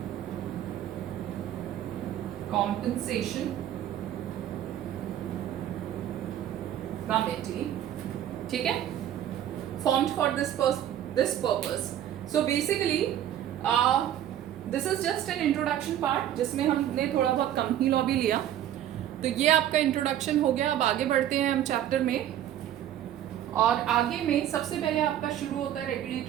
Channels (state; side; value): quieter; left; 11.4 dB